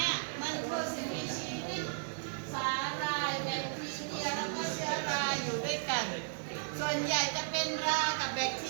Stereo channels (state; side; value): silent; left; digital silence